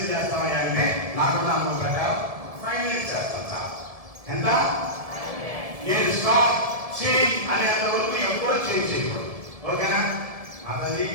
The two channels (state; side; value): late; left; 1.7 ms